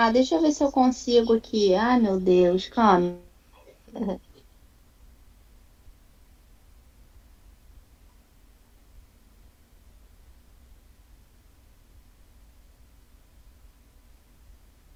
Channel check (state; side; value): identical; both; correlation 1.00